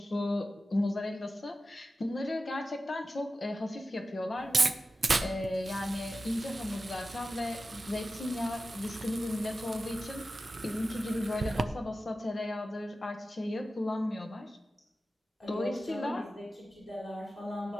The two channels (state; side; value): normal; both; correlation 0.93